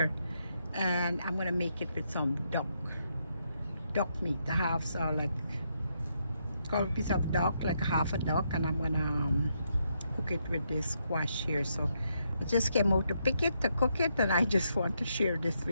and I'm gonna make it with some duck meat. I have like a piece of duck, like half a duck, and I'm gonna cook it with this squash here. So I just came out to pick it, to cook it, and I just want to share this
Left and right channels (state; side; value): inverted; both; correlation -0.78